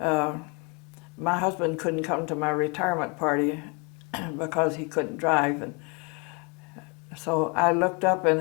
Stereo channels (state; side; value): quieter; right; 32.1 dB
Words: husband couldn't come to my retirement party because he couldn't drive. And so I looked up and